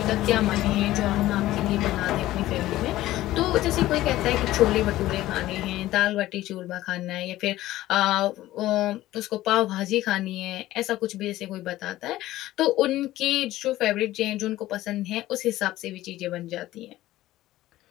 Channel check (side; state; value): right; quieter; 15.6 dB